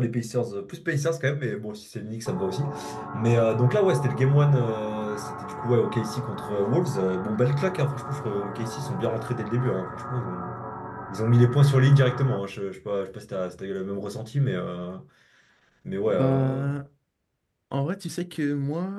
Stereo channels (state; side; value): identical; both; correlation 1.00